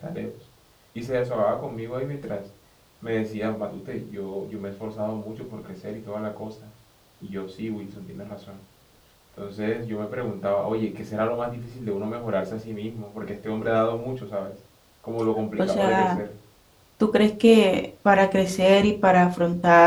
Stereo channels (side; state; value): both; identical; correlation 1.00